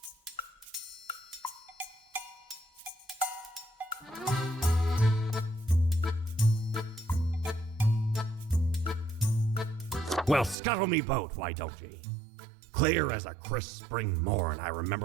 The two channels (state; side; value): drops out; left; at 10.6 s